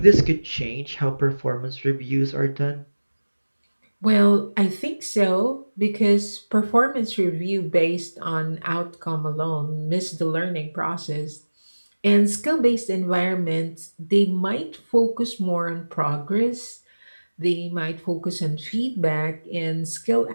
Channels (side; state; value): both; inverted; correlation -1.00